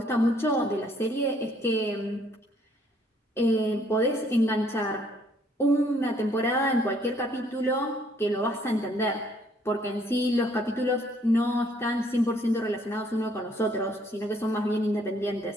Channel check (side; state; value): both; normal; correlation 0.64